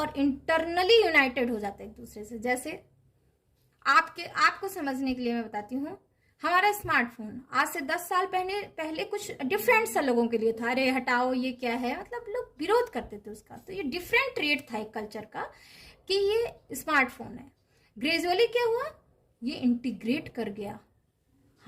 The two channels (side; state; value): both; identical; correlation 1.00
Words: इंटरनली यूनाइटेड हो जाता है एक दूसरे से। जैसे आपको समझने के लिए मैं बताती हूँ, हमारा स्मार्टफोन आज से 10 साल पहले कुछ डिफरेंट सा लोगों के लिए था, अरे हटाओ ये क्या है, मतलब लोग विरोध करते थे उसका। तो ये डिफरेंट ट्रेट था एक कल्चर का कि ये स्मार्टफोन है। ग्रेजुअली क्या हुआ, ये इंटीग्रेट कर गया।